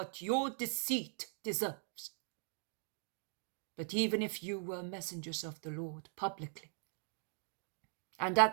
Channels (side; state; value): left; silent; 51 dB below the other